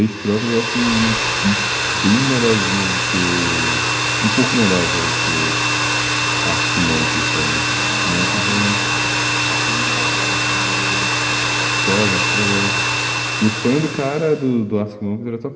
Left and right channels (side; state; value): both; identical; correlation 1.00